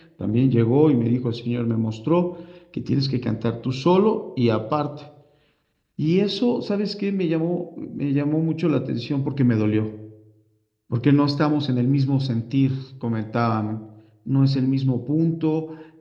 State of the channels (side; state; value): both; identical; correlation 1.00